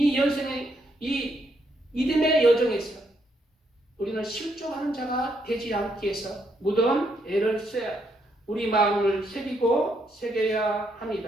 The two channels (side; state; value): both; normal; correlation 0.76